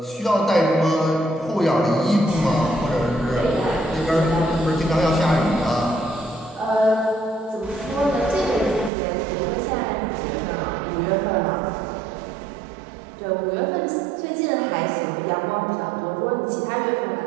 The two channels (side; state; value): left; drops out; at 8.9 s